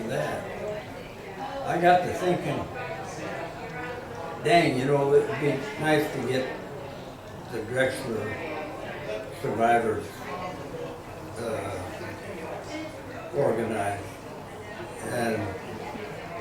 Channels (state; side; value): identical; both; correlation 1.00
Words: that, I got to thinking, dang, you know, it would be nice to get the Drexler survivors organized. And